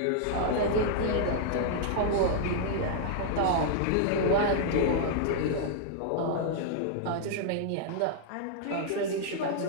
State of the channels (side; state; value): both; different; correlation -0.01